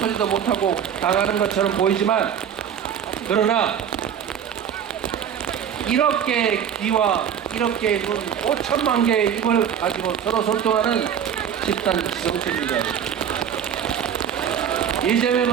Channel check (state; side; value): quieter; left; 8.6 dB